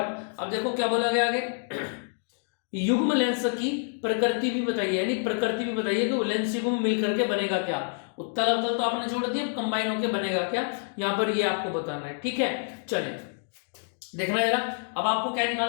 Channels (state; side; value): silent; right; 60 dB below the other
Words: अब देखो क्या बोला गया आगे। युग्म लेंस की प्रकृति भी बताइए, यानी प्रकृति भी बताइए कि वो लेंस युग्म मिल करके बनेगा क्या। उत्तल अवतल तो आपने छोड़ दिया, कंबाइन होकर बनेगा क्या, यहां पर ये आपको बताना है। ठीक है, चलिए देखना जरा। अब आपको क्या